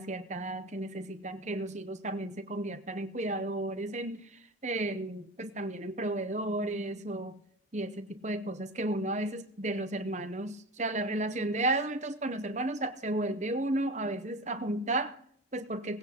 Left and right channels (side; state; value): both; normal; correlation 0.31